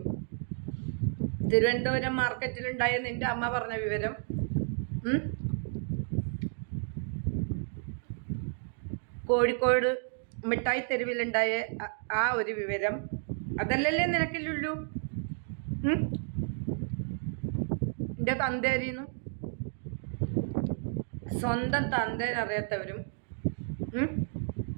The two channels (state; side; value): silent; left; 57 dB below the other